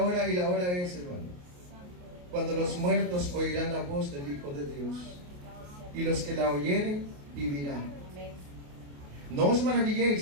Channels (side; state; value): left; late; 28 ms